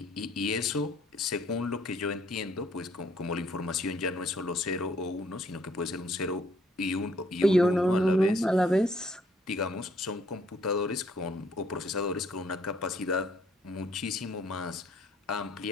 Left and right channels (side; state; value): both; normal; correlation 0.64